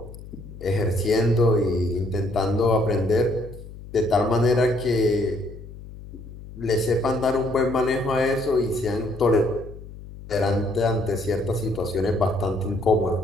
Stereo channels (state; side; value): noise; left; hum, 15 dB below the sound